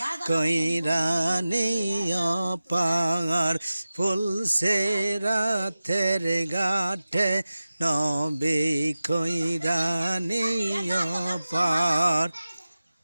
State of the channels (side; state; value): both; inverted; correlation -0.95